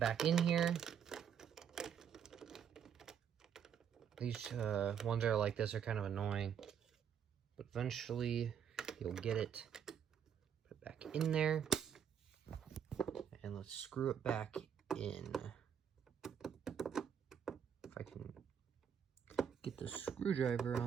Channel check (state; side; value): quieter; left; 8.1 dB